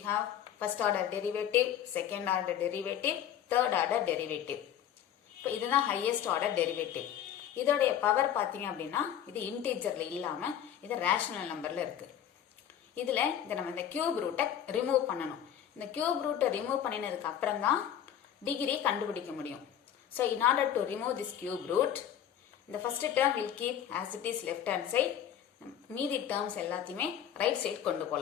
have first order derivative, second order derivative, third order derivative. இப்போ இதுதான் highest order derivative. இதோடைய power பார்த்தீங்க அப்படின்னா இது இன்டீஜர்ல இல்லாம இது rational நம்பர்ல இருக்கு. இதுல நம்ம இந்த கியூப் ரூட்டை ரிமூவ் பண்ணணும். இந்த கியூப் ரூட்டை ரிமூவ் பண்ணினதுக்கு அப்புறம் தான் டிகிரி கண்டுபிடிக்க முடியும். So in order to remove this cube root, the first term will keep as it is left hand side. மீதி terms எல்லாத்தையுமே right side கொண்டு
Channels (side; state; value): right; quieter; 9.9 dB